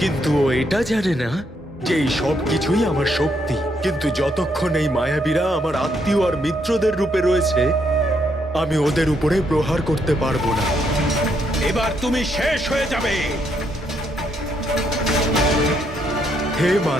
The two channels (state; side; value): normal; both; correlation 0.75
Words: ও এটা জানে না যে এই সব কিছুই আমার শক্তি। কিন্তু যতক্ষণ এই মায়াবীরা আমার আত্মীয় আর মিত্রদের রূপে রয়েছে, আমি ওদের উপরে প্রহার করতে পারবো না। এবার তুমি শেষ হয়ে যাবে। হে